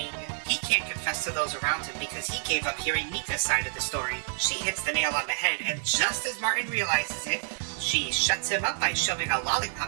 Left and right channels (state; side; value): silent; left; digital silence